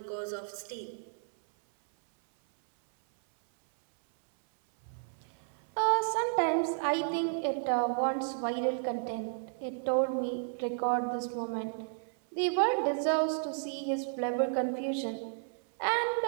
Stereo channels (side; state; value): left; silent; 56 dB below the other